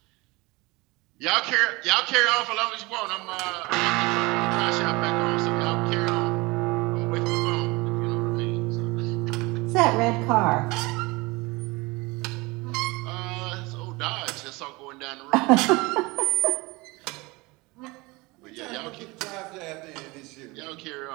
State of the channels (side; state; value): left; quieter; 23.8 dB